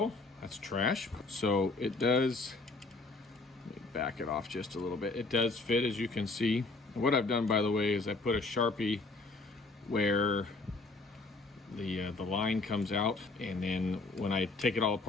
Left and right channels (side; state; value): right; quieter; 3.4 dB